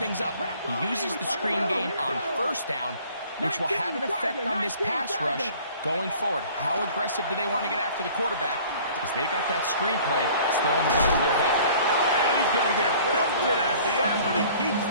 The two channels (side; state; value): both; inverted; correlation -0.51